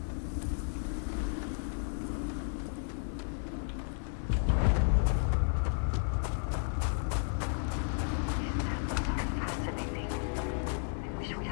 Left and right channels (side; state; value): right; silent; digital silence